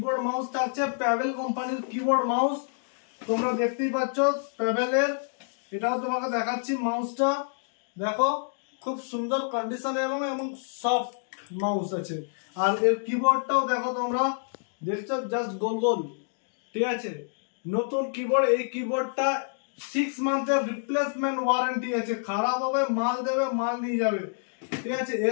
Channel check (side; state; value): right; silent; digital silence